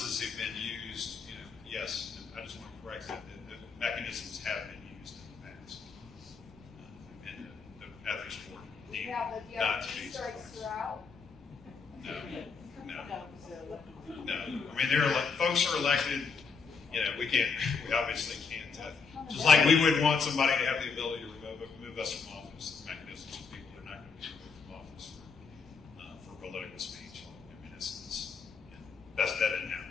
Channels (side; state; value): right; quieter; 5.3 dB